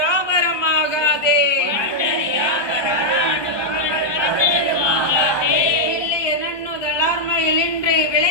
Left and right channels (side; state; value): right; late; 1.2 ms